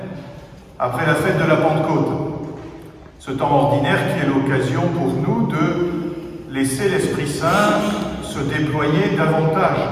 après la fête de la Pentecôte. Ce temps ordinaire qui est l'occasion pour nous de laisser l'Esprit Saint se déployer davantage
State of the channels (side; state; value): both; identical; correlation 1.00